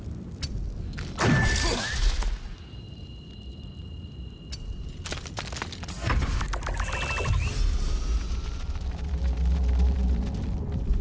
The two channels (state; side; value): identical; both; correlation 1.00